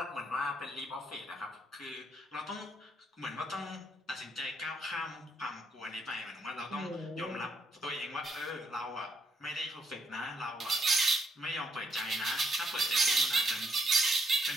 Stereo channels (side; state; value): both; normal; correlation 0.74